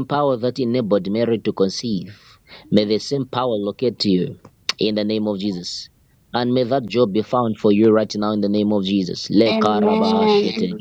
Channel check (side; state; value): both; identical; correlation 1.00